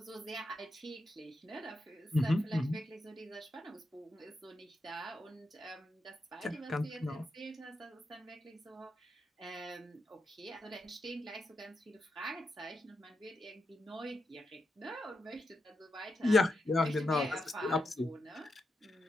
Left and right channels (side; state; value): both; normal; correlation 0.86